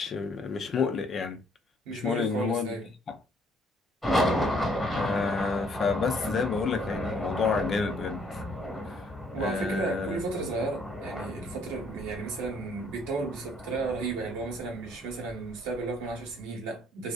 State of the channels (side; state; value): both; normal; correlation 0.64